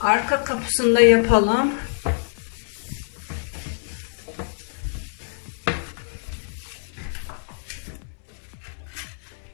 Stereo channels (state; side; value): silent; right; 62 dB below the other